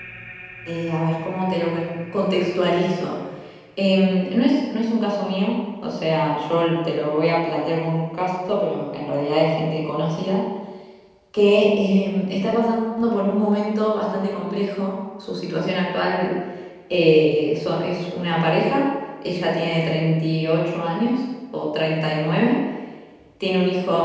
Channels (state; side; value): identical; both; correlation 1.00